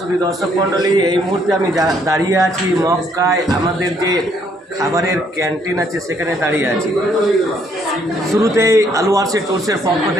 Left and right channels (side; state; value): both; normal; correlation 0.68